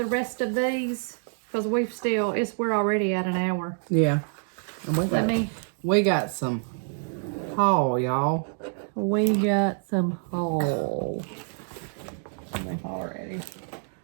rest of these because we're already at an hour. Yeah. And we got some haul, y'all. We got some haul. Already.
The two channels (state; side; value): silent; left; 60 dB below the other